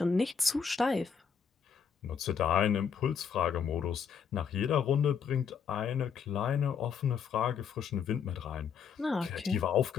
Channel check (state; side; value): quieter; right; 6.9 dB